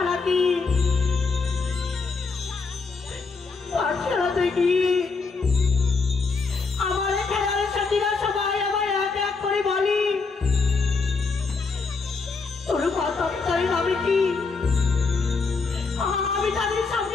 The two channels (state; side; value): quieter; right; 4.4 dB